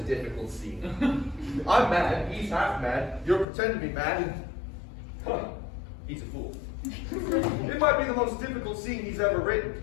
difficult scene. I'm mad, he's half mad, you're pretending to be mad, and he's a fool. It might be the most difficult scene he's ever written,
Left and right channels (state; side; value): drops out; right; at 3.5 s